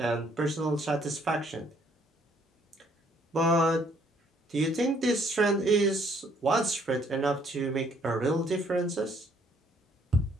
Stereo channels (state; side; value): normal; both; correlation 0.65